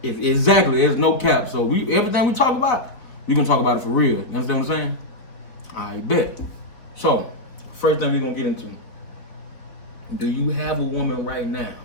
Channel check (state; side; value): late; right; 4.0 ms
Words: Exactly. There's no cap. So everything we talk about, we going to talk about it for real. You understand what I'm saying? I bet. So, first thing we're going to get into. Do you have a woman right now?